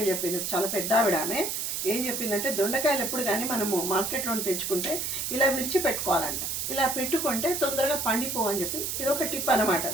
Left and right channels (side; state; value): right; noise; hiss, 2 dB below the sound